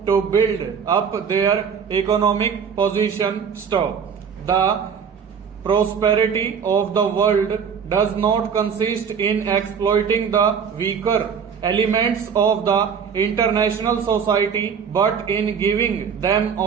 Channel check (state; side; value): quieter; left; 6.8 dB